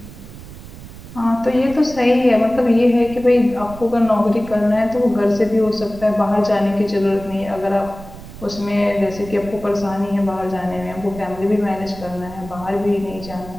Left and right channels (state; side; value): noise; right; rumble, 15 dB below the sound